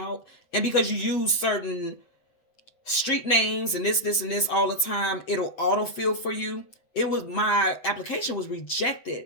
and because you use certain street names and this and this all the time, it'll autofill for you. It was, my application was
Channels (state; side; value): late; right; 7.9 ms